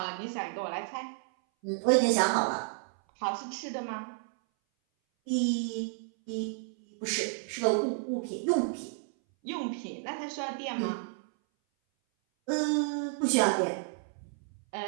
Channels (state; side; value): silent; left; 57 dB below the other